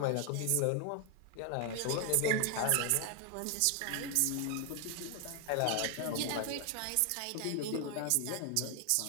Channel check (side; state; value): both; different; correlation 0.01